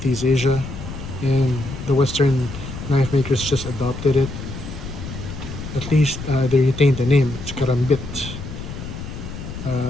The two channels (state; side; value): noise; left; rumble, 9 dB below the sound